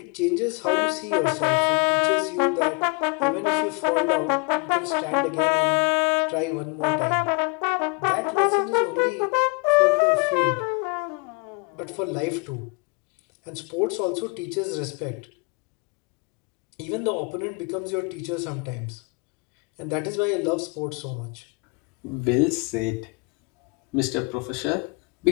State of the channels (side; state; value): right; quieter; 32.0 dB